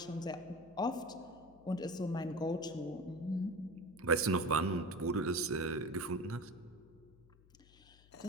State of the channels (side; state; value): left; noise; hum, 25 dB below the sound